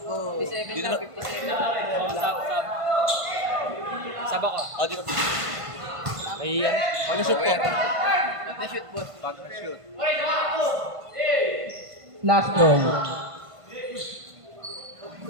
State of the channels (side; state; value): left; late; 1.5 ms